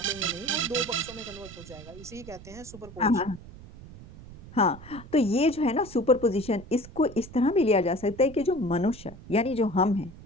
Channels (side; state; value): right; noise; rumble, 17 dB below the sound